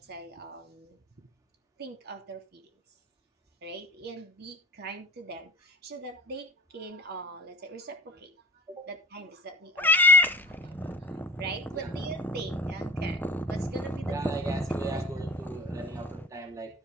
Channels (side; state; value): both; normal; correlation 0.39